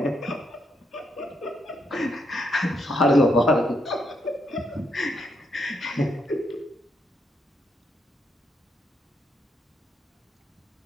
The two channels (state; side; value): normal; both; correlation 0.78